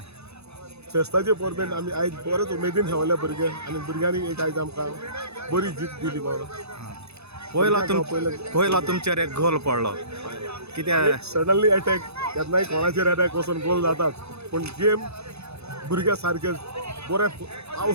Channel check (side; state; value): left; late; 0.79 ms